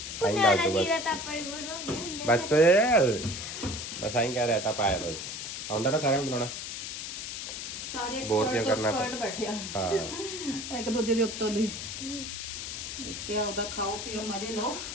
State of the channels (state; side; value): noise; left; hiss, 6 dB below the sound